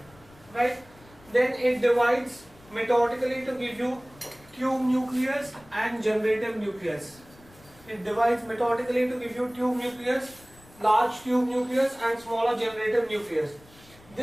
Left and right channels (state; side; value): noise; left; rumble, 25 dB below the sound